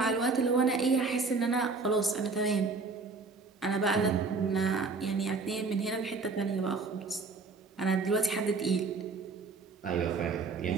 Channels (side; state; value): left; quieter; 4.2 dB